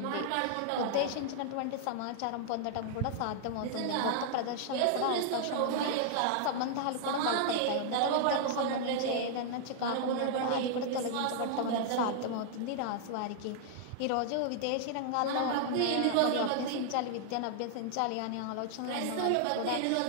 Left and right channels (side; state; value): both; different; correlation -0.01